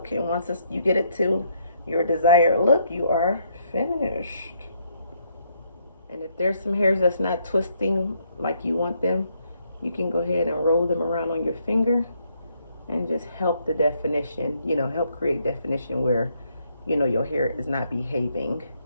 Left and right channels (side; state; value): both; inverted; correlation -0.72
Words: And once you get it to your desired look, you are finished. And if there's some hairs that's not twisting like you want them, you can go ahead and roll them around on your finger and just help the definition, you know, help create definition where, you know, your hair is not behaving.